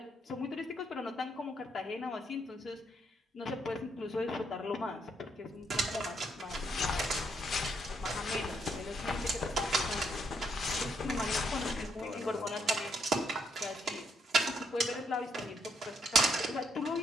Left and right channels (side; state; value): both; normal; correlation 0.74